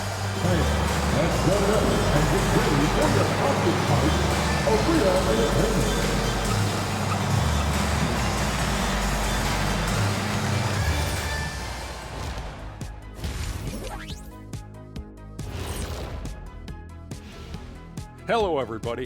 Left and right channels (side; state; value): both; identical; correlation 1.00